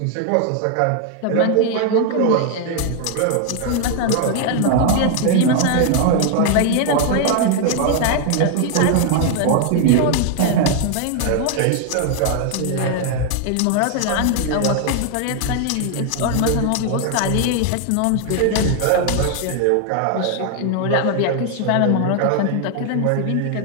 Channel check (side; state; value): both; different; correlation 0.00